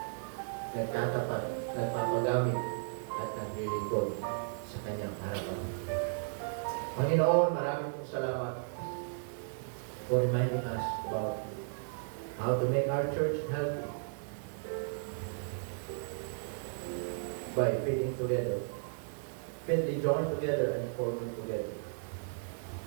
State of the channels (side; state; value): left; silent; 55 dB below the other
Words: nagpapagamit, at naglilingkod sa Kanyang harapan. Panginoon, maraming pong salamat for reminding us about how to make our church healthy by fitting together, fitly joined together and forming together.